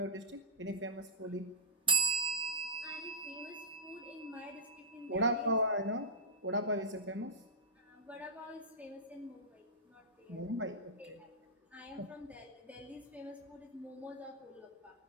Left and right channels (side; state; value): both; normal; correlation -0.11